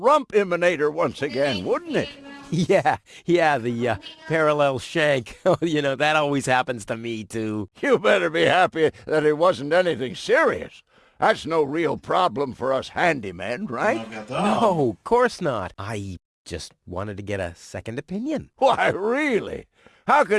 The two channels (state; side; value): identical; both; correlation 1.00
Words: emanator once again, wouldn't it? Yeah, the parallel shank. Oh, you know, that always happens to me, too. You better be happy that it wasn't anything serious. That's no real problem for us handymen, right? No wiadomo. No, of course not. I just wanted to get a second opinion. Why, really? How